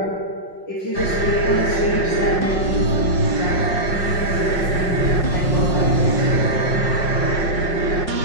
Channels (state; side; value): late; right; 5.5 ms